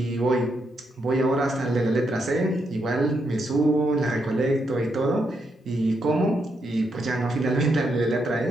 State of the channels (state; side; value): normal; both; correlation 0.80